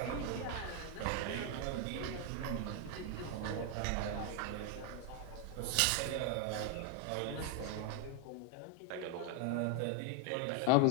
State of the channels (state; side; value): different; both; correlation 0.01